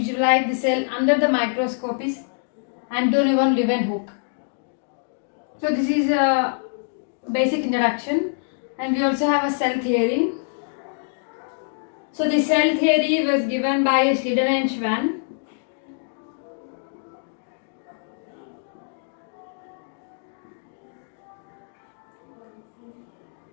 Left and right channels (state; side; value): silent; right; digital silence